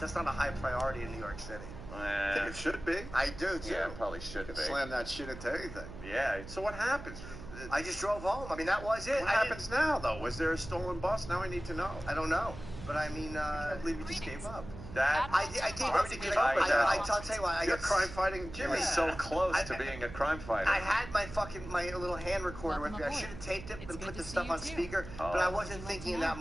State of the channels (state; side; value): noise; right; hum, 12 dB below the sound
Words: not a high priority in New York City. I think it should be. I do, too. Yeah, it probably should be. Slam that shit into anything. Yeah. So what happens? I just drove home. I mean, that was it. What happens now, though? Was there a stolen bus? Now I need to know. I don't know. But I mean, I can't believe you just gave up. I gave up to get up. I'll tell you what. You're crime fighting Jimmy. Jimmy's so close to being a crime fighter. I had my little hand recorder with me. I should have taped it and put the stuff on speaker, but I wasn't thinking in that